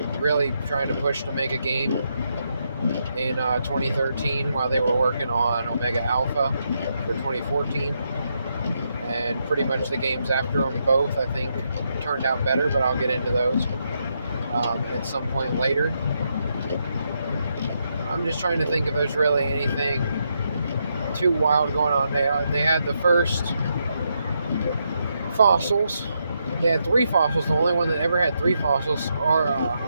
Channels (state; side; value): inverted; both; correlation -0.81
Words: really trying to push to make a game in 2013 while they were working on Omega Alpha for 2014. And pretty much the games after them both, I think, turned out better, but I'll get into those at some point later. I'm just trying to think if there's really anything too wild going on there. They had the first fossils. They had 3 fossils. The only one that ever had 3 fossils are